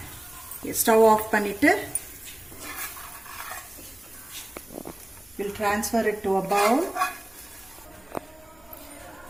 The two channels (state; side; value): noise; left; hum, 30 dB below the sound